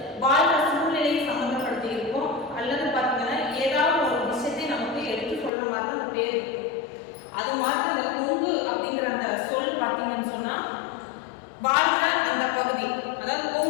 வாழ்ற சூழ்நிலையை சம்மந்தப்படுத்தி இருக்கும், அல்லது பார்த்தீங்கன்னா ஏதாவது ஒரு விஷயத்தை நமக்கு எடுத்து சொல்ற மாதிரி தான் அந்த பேர் இருக்கும். அது மாதிரி அந்த கொங்கு அப்படிங்கிற அந்த சொல் பார்த்தீங்கன்னு சொன்னா வாழ்ற அந்த பகுதி, அதாவது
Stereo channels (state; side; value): drops out; right; at 5.5 s